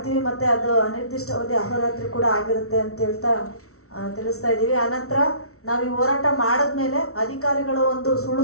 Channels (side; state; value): right; late; 0.63 ms